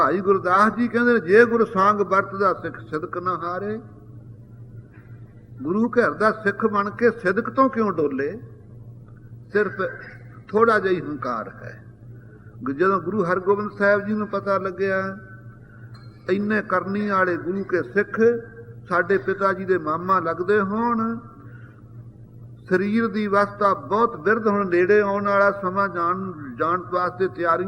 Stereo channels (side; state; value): both; identical; correlation 1.00